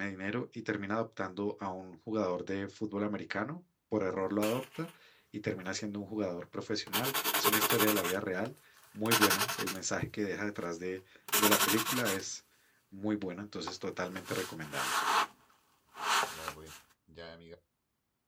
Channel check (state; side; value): identical; both; correlation 1.00